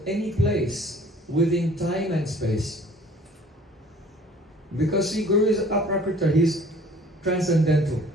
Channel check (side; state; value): both; normal; correlation 0.51